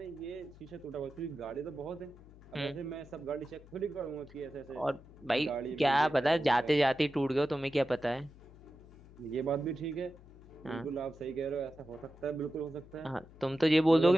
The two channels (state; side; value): noise; left; hum, 21 dB below the sound